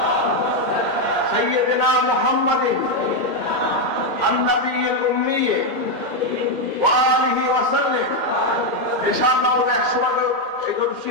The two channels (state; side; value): late; left; 2.1 ms